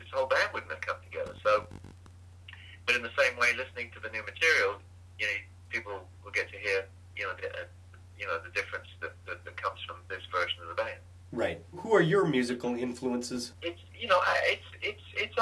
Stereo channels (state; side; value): identical; both; correlation 1.00